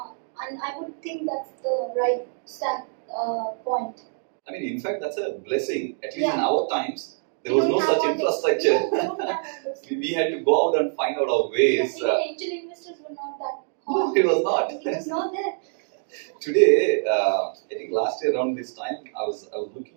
And I would think that's the right start point. I mean, in fact, that's a blessing. At least in our times, there was We no don't have such all infrastructure. We don't have all this. We had to go out and find out our ways. Even angel investors were not that No, it was not. It was not there. Today, I think last year around this time, I was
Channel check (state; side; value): silent; left; digital silence